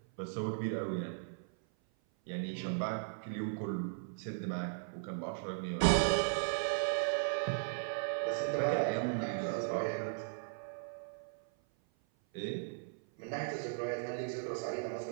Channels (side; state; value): left; silent; 53 dB below the other